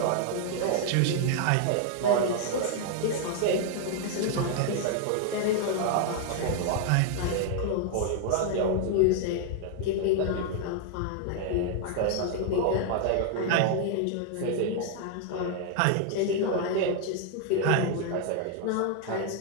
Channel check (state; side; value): different; both; correlation 0.00